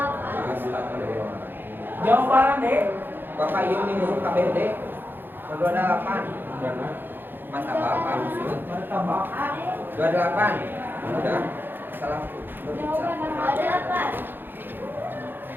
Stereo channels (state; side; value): late; left; 0.097 ms